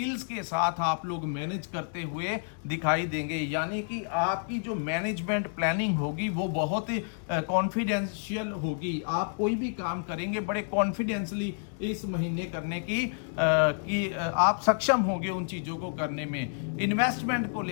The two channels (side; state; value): right; silent; digital silence